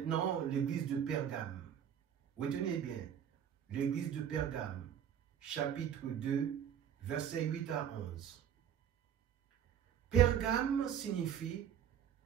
l'église de Pergame. Retenez bien, l'église de Pergame, chapitre 2, versets 8 à 11. Pergame signifie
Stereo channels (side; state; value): left; quieter; 9.2 dB